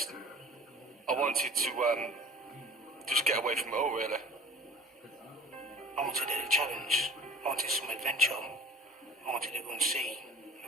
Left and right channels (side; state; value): both; normal; correlation 0.45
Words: I wanted to, just get away from it all, really. I wanted a challenge. I wanted some adventure. I wanted to go and see a